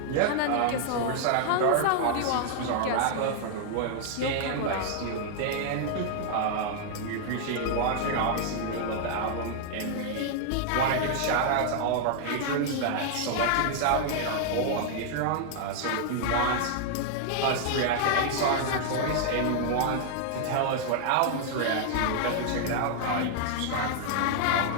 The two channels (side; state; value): both; different; correlation -0.01